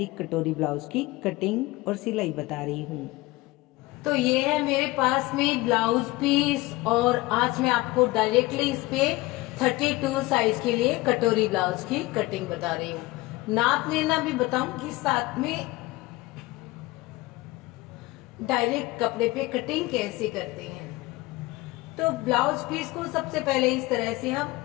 कटोरी ब्लाउज की कटिंग और सिलाई बता रही हूँ। तो ये है मेरे पास में ब्लाउज पीस और आज मैं आपको डायरेक्टली इस पे 32 साइज के लिए कटोरी ब्लाउज की कटिंग बता रही हूँ। नाप लेना भी बताऊंगी, साथ में डायरेक्ट कपड़े पे कटिंग कैसे करते हैं। तो ब्लाउज पीस को सबसे पहले इस तरह से हम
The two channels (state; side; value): quieter; right; 20.2 dB